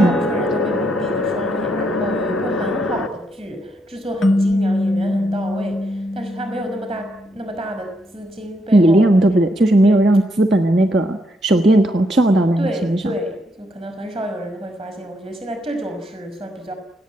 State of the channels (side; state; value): both; normal; correlation 0.77